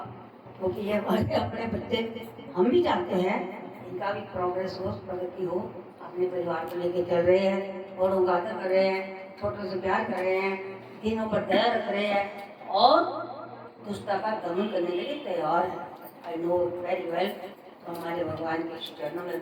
क्योंकि ये हमारे अपने बच्चे, हम भी चाहते हैं इनका भी प्रोग्रेस हो, प्रगति हो। अपने परिवार को लेके चल रहे हैं, बड़ों का आदर कर रहे हैं, छोटों से प्यार कर रहे हैं, तीनों पर दया रख रहे हैं और दुष्टता का दमन करने के लिए तैयार है। I know very well. तो हमारे भगवान के चरणों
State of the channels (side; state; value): both; identical; correlation 1.00